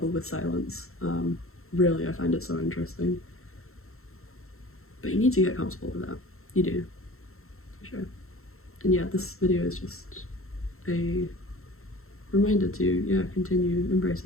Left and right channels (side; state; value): right; late; 0.62 ms